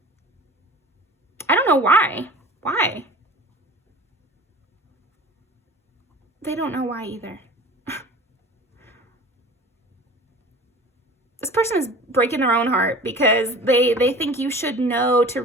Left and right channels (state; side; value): normal; both; correlation 0.41